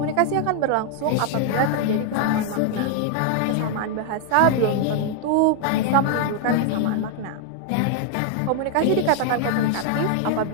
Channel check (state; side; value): different; both; correlation 0.00